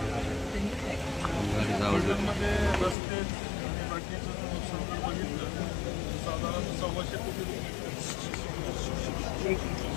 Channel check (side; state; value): right; drops out; at 3.0 s